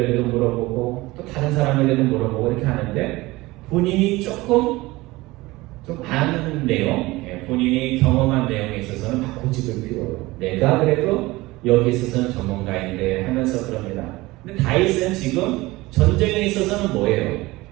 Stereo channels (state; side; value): quieter; left; 20.3 dB